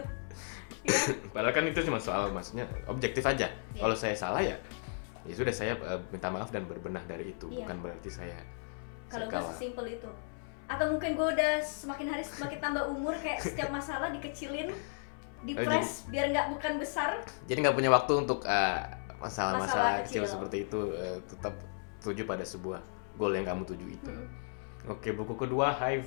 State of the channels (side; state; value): right; silent; 55 dB below the other